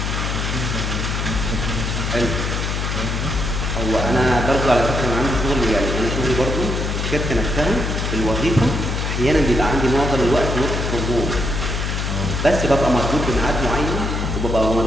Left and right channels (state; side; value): noise; left; hum, 1 dB below the sound